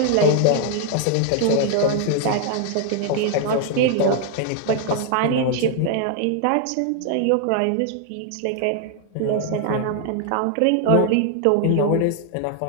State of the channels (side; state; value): both; different; correlation 0.00